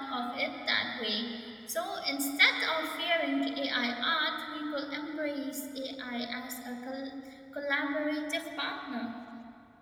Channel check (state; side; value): identical; both; correlation 1.00